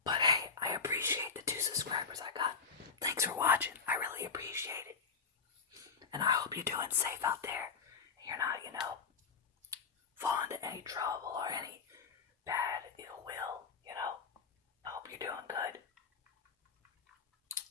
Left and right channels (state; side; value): quieter; right; 5.7 dB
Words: But hey, I appreciate the 2 subscribers I got. Thanks for watching. I really appreciate it. And I hope you're doing safe out there. You're not, fall into any trouble or any bad ill will, I hope you're doing good.